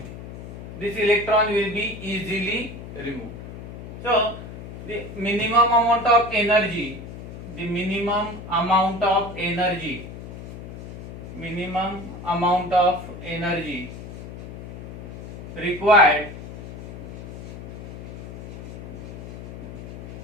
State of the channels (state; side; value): noise; left; hum, 11 dB below the sound